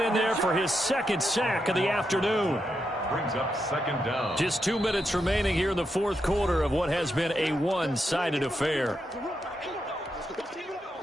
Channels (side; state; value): both; normal; correlation 0.84